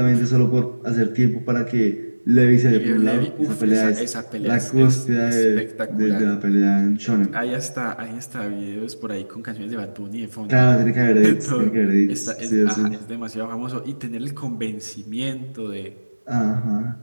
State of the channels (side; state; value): both; inverted; correlation -1.00